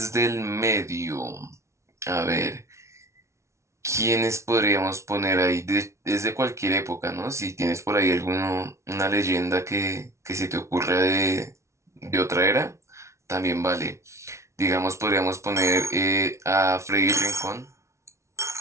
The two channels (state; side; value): late; left; 0.13 ms